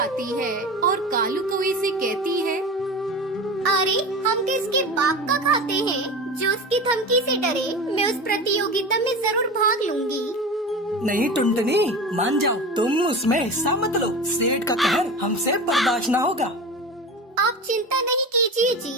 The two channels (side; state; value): both; normal; correlation 0.30